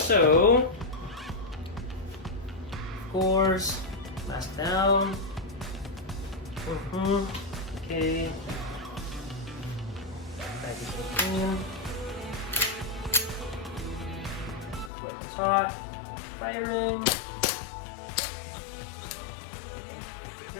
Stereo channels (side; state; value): right; drops out; at 14.9 s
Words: of course, mask down. Okay. Packaging in. It's hot. Firing.